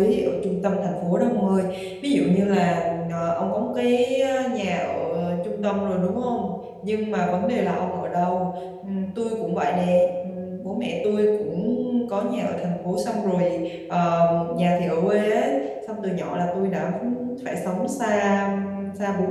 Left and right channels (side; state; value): both; identical; correlation 1.00